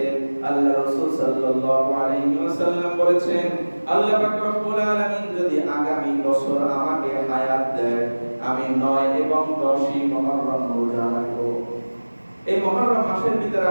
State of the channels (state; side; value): inverted; both; correlation -1.00